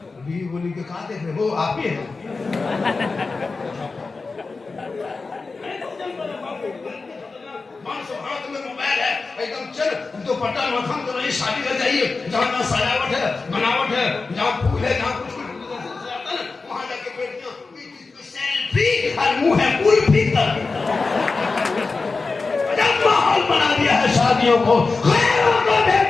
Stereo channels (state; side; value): quieter; right; 4.1 dB